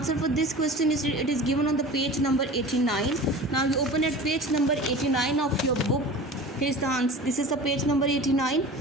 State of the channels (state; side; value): normal; both; correlation 0.37